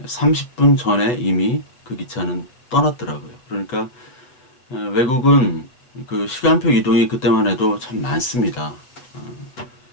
30분 전에 이미 그 기차는 떠났더라고요. 그러니까 외국은 그 시간표 이동이 그때만 해도 참 많습니다.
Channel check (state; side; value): late; right; 8.0 ms